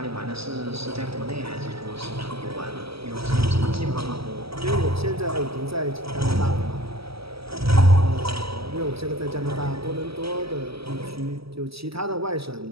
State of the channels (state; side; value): late; left; 0.76 ms